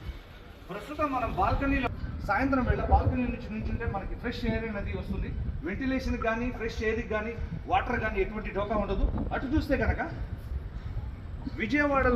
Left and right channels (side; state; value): both; identical; correlation 1.00